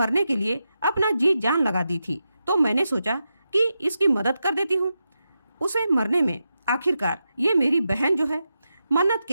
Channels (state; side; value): inverted; both; correlation -0.88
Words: के लिए अपना जी जान लगा दी थी, तो मैंने सोचा कि इसकी मदद कर देती हूँ उसे मरने में। आखिरकार ये मेरी बहन जो है। मन्नत